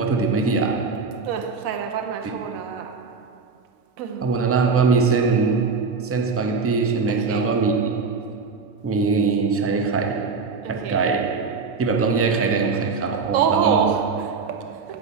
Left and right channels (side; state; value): left; quieter; 4.8 dB